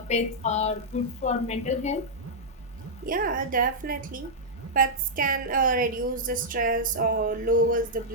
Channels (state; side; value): normal; both; correlation -0.07